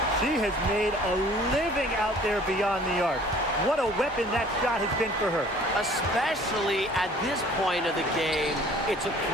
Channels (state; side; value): normal; both; correlation 0.52